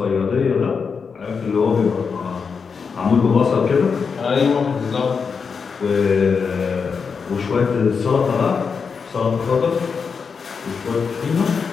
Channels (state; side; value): quieter; right; 5.7 dB